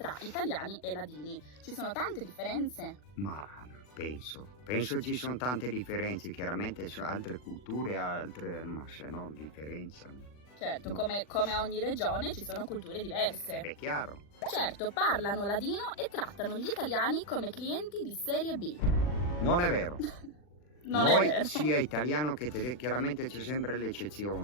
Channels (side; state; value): right; late; 40 ms